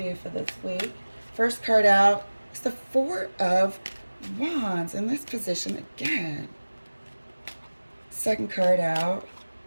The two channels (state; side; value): inverted; both; correlation -1.00